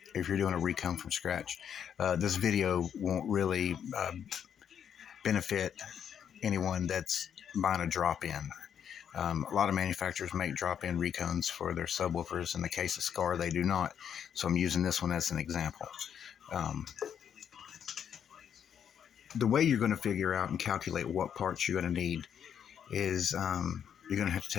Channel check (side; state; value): right; quieter; 8.5 dB